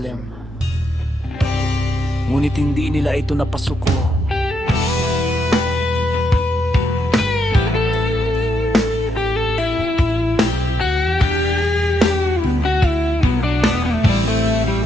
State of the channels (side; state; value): both; normal; correlation 0.79